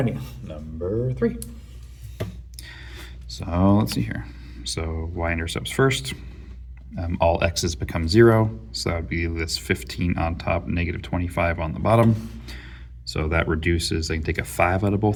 number 3. So let's see here. So y-intercepts first. All x's become 0, so that would be this 15 on top, negative 25 on the bottom. So that reduces, I can take a 5 out of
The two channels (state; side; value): identical; both; correlation 1.00